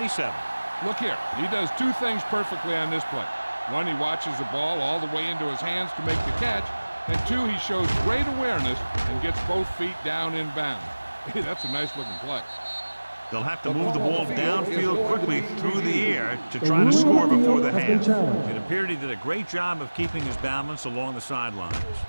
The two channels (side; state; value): both; inverted; correlation -1.00